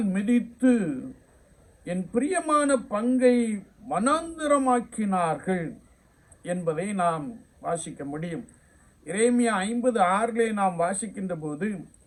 மிதித்து என் பிரியமான பங்கை வனாந்திரமாக்கினார்கள் என்பதை நாம் வாசிக்க முடியும். எரேமியா 50:6 நாம் வாசிக்கின்ற போது,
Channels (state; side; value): identical; both; correlation 1.00